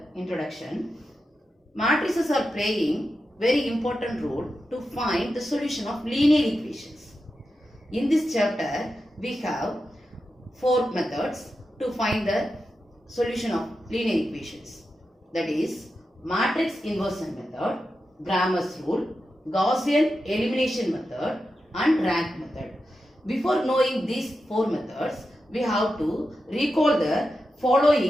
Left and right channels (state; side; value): normal; both; correlation 0.90